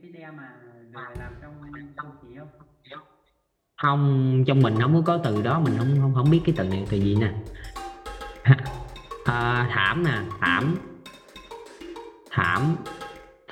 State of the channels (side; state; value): both; identical; correlation 1.00